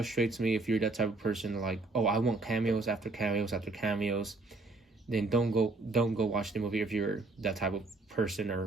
me if you're that type of person like, oh, I want cameos after cameos after cameos. Then don't go watch the movie if you're that type of person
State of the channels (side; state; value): left; quieter; 3.3 dB